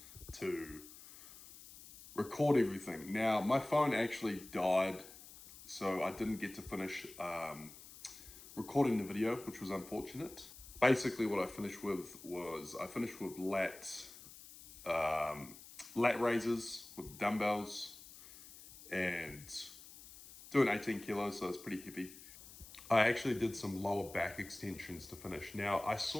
to record everything. Now, my phone actually died, so I didn't get to finish recording the video, which was unfortunate. Basically, what I finished with was lat raises with dumbbells and doing 18 kilos, so it's pretty heavy. I actually did some lower back extensions to finish. Now, I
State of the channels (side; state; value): left; noise; hiss, 17 dB below the sound